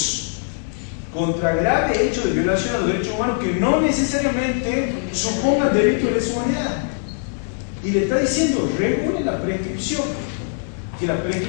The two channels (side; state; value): right; silent; digital silence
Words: de violación a los derechos humanos que no necesariamente supongan delitos de lesa humanidad. Y le está diciendo, regule la prescripción, que la